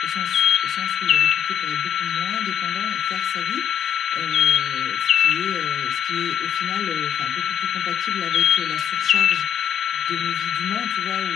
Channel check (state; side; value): quieter; right; 8.8 dB